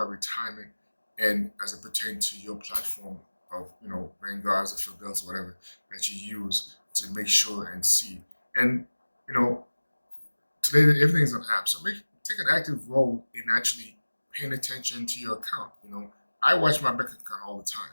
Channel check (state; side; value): inverted; both; correlation -1.00